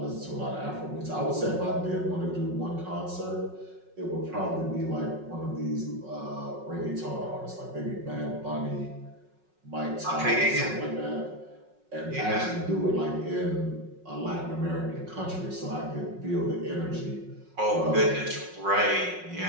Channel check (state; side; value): late; left; 5.4 ms